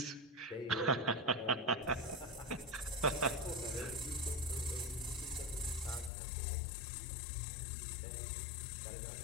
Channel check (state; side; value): drops out; right; at 6.1 s